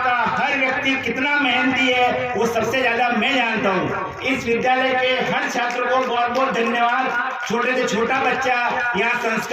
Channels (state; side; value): identical; both; correlation 1.00